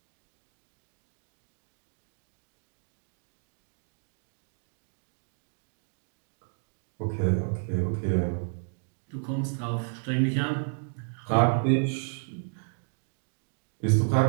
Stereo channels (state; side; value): silent; left; 56 dB below the other